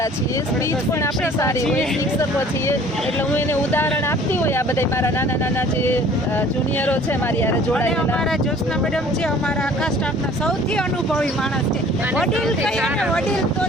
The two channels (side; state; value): both; normal; correlation 0.51